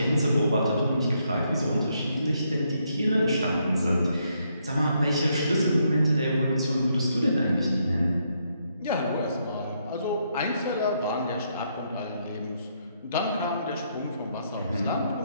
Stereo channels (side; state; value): both; inverted; correlation -0.76